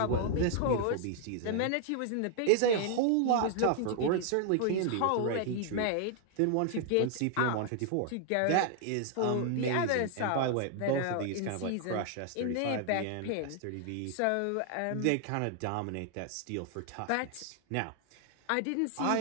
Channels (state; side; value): different; both; correlation 0.00